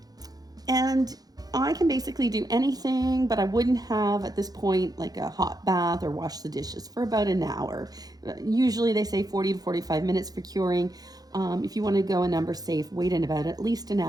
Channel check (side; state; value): left; late; 0.19 ms